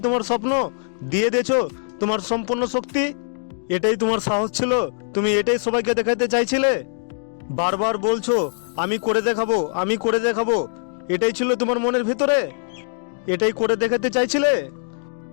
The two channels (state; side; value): silent; right; digital silence